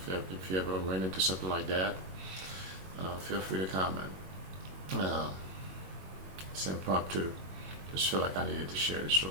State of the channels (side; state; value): left; late; 21 ms